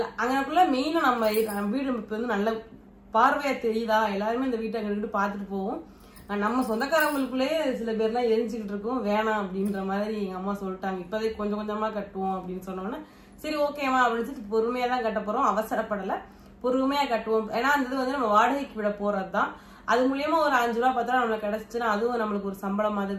அங்கக்குள்ள மெயினா நம்ம வீடு இப்ப வந்து நல்ல பார்வையா தெரியுதா, எல்லாருமே இந்த வீட்டை அங்கிட்டு பாத்துட்டு போவோம். நம்ம சொந்தக்காரங்களுக்குள்ளே சில பேர்லாம் எரிஞ்சுக்கிட்டு இருக்கோம். வேணாம் அப்படின்ற மாதிரி எங்க அம்மா சொல்லிட்டாங்க. இப்பதே கொஞ்சம் கொஞ்சமா கட்டுவோம் அப்படின்னு சொன்னோன்னா சரி ஓகேவா அப்படின்னு பொறுமையா தான் கட்ட போறோம். அவசரப்படல, பொறுமையா கட்டுவோம். ஏன்னா அந்த இது வந்து நம்ம வாடகைக்கு விட போறதுதான். அது மூலியமா ஒரு 5 ரூபா 10 ரூபா நம்மளுக்கு கிடைச்சுன்னா அதுவும் நம்மளுக்கு ஒரு சம்பளம்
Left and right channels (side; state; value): both; identical; correlation 1.00